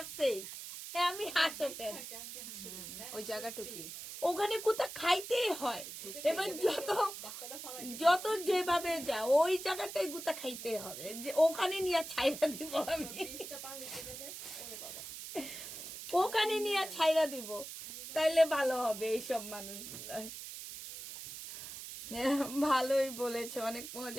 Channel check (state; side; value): noise; right; hiss, 10 dB below the sound